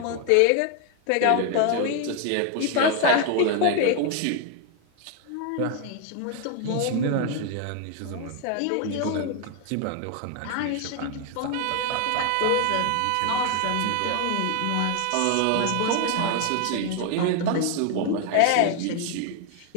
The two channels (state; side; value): different; both; correlation 0.01